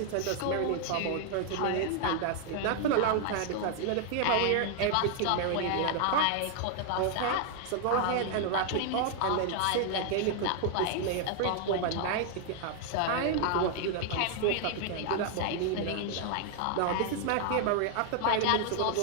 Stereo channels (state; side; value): different; both; correlation 0.00